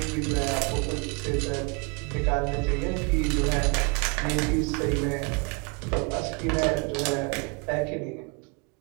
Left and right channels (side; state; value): left; quieter; 33.1 dB